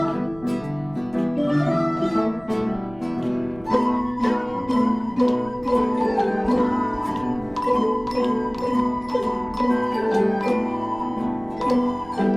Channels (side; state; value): right; noise; rumble, 22 dB below the sound